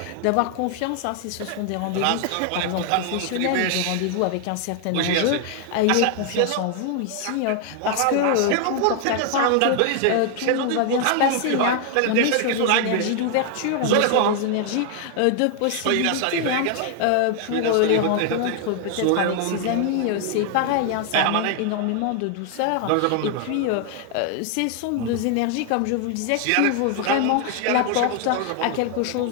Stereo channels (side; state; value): both; different; correlation 0.00